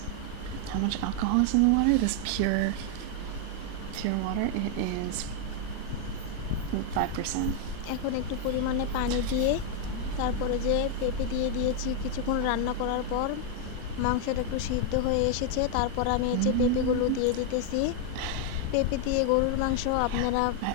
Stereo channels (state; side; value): different; both; correlation 0.00